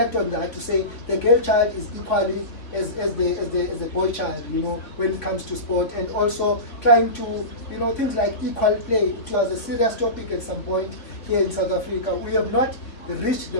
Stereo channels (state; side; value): late; right; 3.9 ms